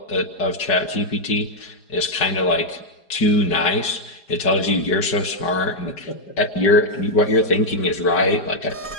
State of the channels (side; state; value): right; late; 4.9 ms